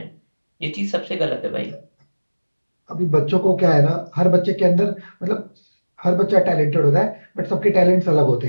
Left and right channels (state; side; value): inverted; both; correlation -1.00